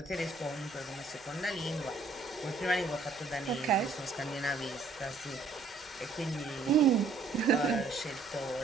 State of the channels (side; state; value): left; quieter; 4.1 dB